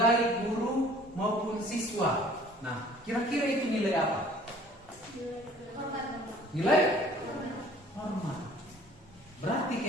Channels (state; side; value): normal; both; correlation 0.52